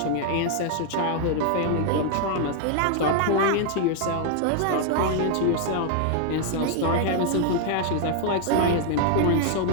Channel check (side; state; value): both; different; correlation 0.00